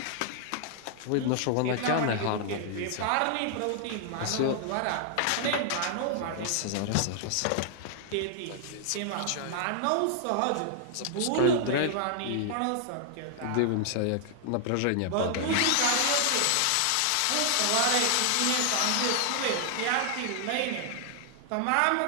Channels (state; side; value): different; both; correlation 0.00